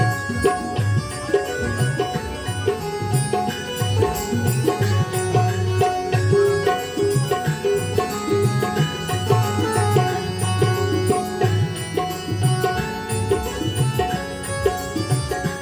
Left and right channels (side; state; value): both; identical; correlation 1.00